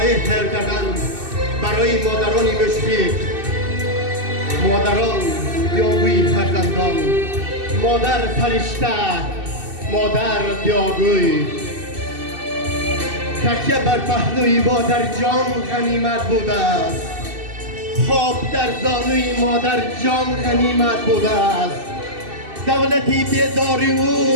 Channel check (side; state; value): left; late; 2.6 ms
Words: تهیه کردن برای مادران مشفق، مادران دیاگوی فرزندان، مادر فرشته، مادر دیاگوی. تکیه بر پهلوی مادر جان غنیمت بوده است. خواب در زانوی مادر جان غنیمت بوده است. دولتی بیداری